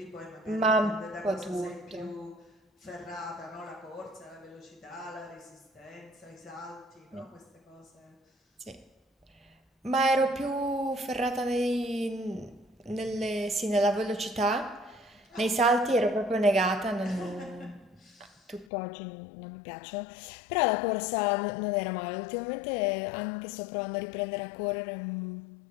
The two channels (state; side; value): drops out; right; at 18.7 s